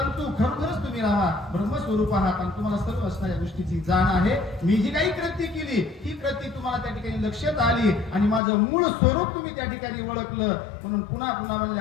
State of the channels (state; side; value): drops out; right; at 8.4 s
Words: खरोखरच तुम्ही रामा ब्रह्मस्वरूप आहात आणि तुम्हाला सर्व असणाऱ्या गोष्टीची जाण आहे. मी जी काही कृती केली ही कृती तुम्हाला त्या ठिकाणी लक्षात आली आणि माझं मूळ स्वरूप तुम्ही त्या ठिकाणी ओळखलं. म्हणून पुन्हा पुन्हा